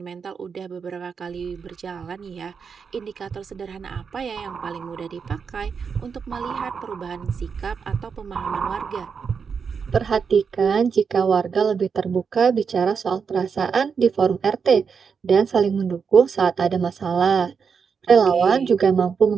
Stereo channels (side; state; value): left; quieter; 6.0 dB